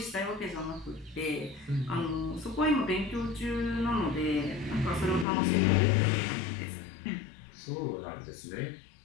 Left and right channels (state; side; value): drops out; right; at 5.2 s